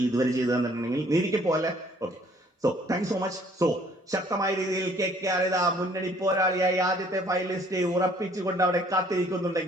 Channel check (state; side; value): normal; both; correlation 0.60